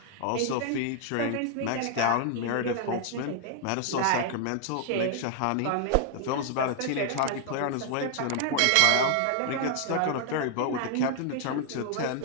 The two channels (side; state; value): both; different; correlation 0.00